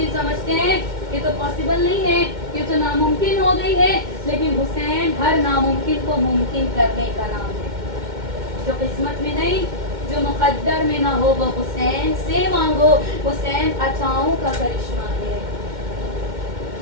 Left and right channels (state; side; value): late; left; 2.1 ms